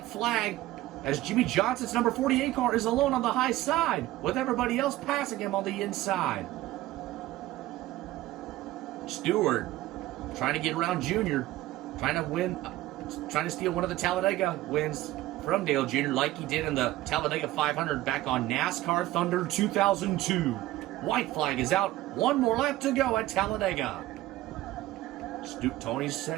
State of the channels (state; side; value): quieter; left; 16.3 dB